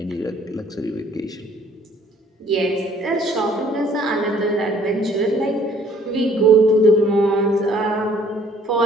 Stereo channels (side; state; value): both; normal; correlation 0.58